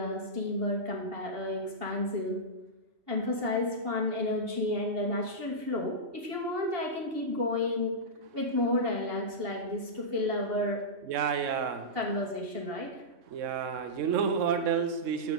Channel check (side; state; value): left; late; 2.8 ms